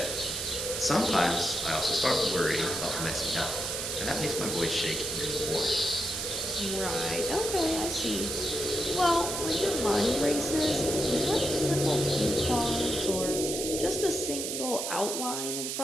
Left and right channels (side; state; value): right; noise; hiss, 3 dB below the sound